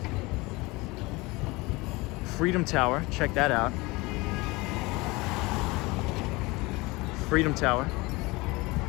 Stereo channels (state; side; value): quieter; right; 23.4 dB